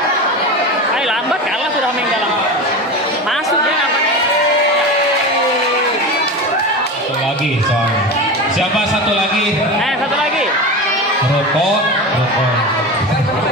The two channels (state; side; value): normal; both; correlation 0.26